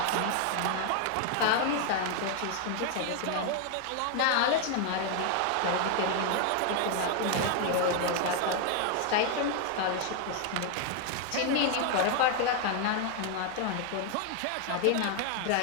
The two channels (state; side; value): different; both; correlation 0.01